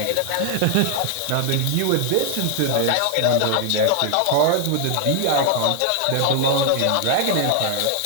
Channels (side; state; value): both; different; correlation 0.00